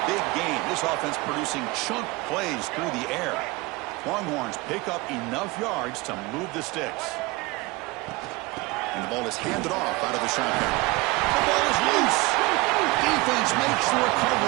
big game. This offense producing chunk plays through the air. Longhorns pick up enough yards to move the sticks. And the ball is handed off out of the shotgun. The ball is loose. Defense makes the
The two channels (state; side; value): quieter; left; 23.0 dB